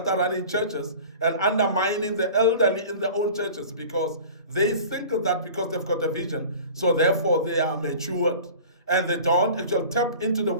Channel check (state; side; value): inverted; both; correlation -0.40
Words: are running churches and undermining the elderly in their own churches because they think that because they've got a vision, so therefore they are matured. And they don't actually tap into the